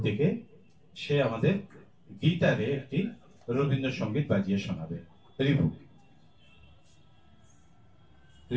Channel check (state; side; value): identical; both; correlation 1.00